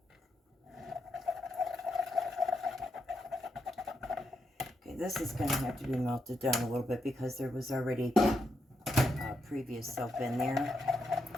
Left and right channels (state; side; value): normal; both; correlation 0.81